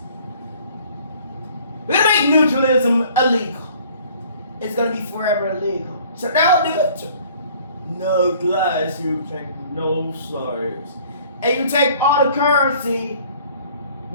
We're gonna make neutralism illegal. It's gonna be forever illegal. So don't do it. No glass, you take no sides. And you take all the currency,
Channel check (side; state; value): both; inverted; correlation -0.54